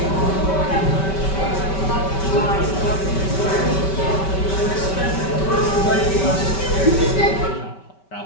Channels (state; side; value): late; right; 5.2 ms